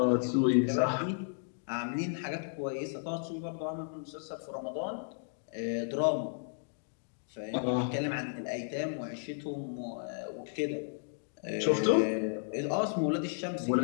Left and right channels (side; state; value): right; silent; digital silence